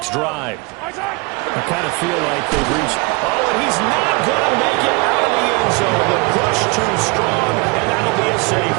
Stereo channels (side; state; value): left; quieter; 27.9 dB